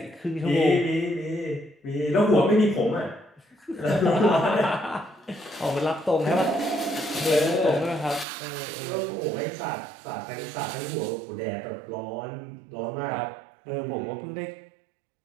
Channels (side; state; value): left; drops out; at 8.2 s